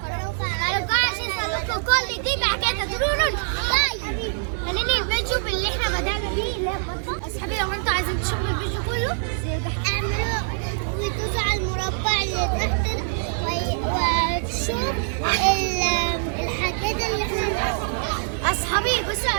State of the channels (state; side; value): silent; left; digital silence